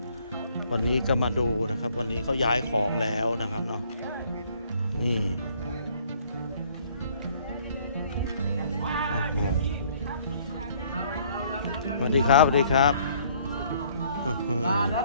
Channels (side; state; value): both; inverted; correlation -0.61